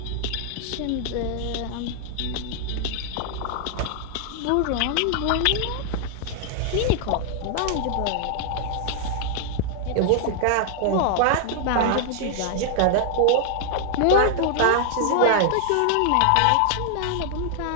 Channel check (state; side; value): different; both; correlation 0.00